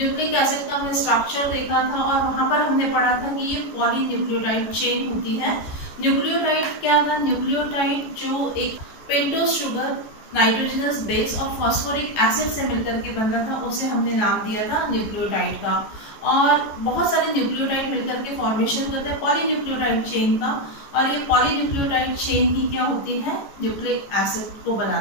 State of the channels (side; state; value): right; late; 14 ms